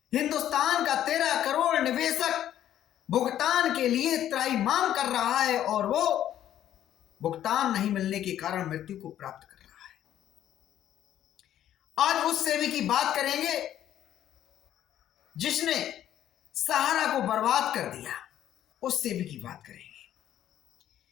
हिंदुस्तान का 13 करोड़ निवेशक भुगतान के लिए त्राहिमाम कर रहा है और वो भुगतान नहीं मिलने के कारण मृत्यु को प्राप्त कर रहा है। आज उस सेबी की बात करेंगे जिसने सहारा को बर्बाद कर दिया। उस सेबी की बात करेंगे।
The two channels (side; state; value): right; quieter; 11.5 dB